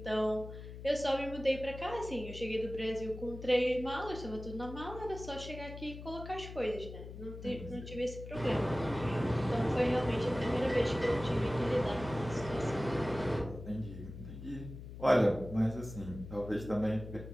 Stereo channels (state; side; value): noise; left; hum, 11 dB below the sound